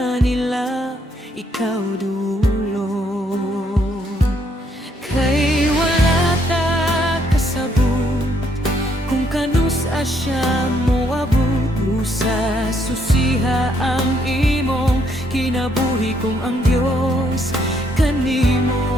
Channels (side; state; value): both; normal; correlation 0.71